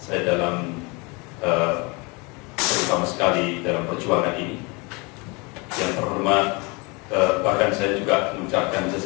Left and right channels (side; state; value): right; quieter; 28.6 dB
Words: saya dalam terutama sekali dalam perjuangan ini. Yang terhormat, bahkan saya juga mengucapkan